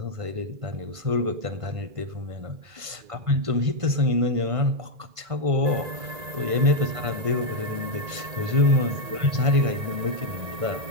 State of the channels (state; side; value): late; left; 1.5 ms